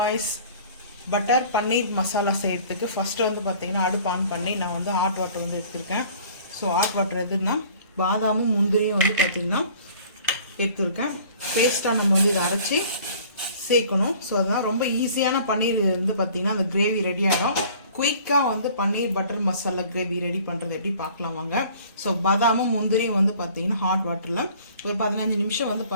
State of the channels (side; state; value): both; inverted; correlation -0.50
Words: butter paneer masala செய்யறதுக்கு first வந்து பாத்தீங்கன்னா அடுப்பு ஆன் பண்ணி நான் வந்து ஹாட் வாட்டர் வந்து எடுத்துர்க்கேன். சோ ஹாட் வாட்டர் எதுனா பாதாமும் முந்திரியும் வந்து பாத்தீங்கன்னா எடுத்துர்க்கேன். பேஸ்டா நம்ம வந்து இத அரைச்சு சேக்கணும். சோ அதான் ரொம்ப ஈஸியான பன்னீர் வந்து பாத்தீங்கன்னா அந்த கிரேவி ரெடி ஆகும். குயிக்கா வந்து பன்னீர் பட்டர் மசாலா கிரேவி ரெடி பண்றது எப்படி பார்க்கலாம் வாங்க. சோ பாதாமும் முந்திரியும் வந்து பாத்தீங்கன்னா ஹாட் வாட்டர்ல ஒரு 15 நிமிஷம் வந்து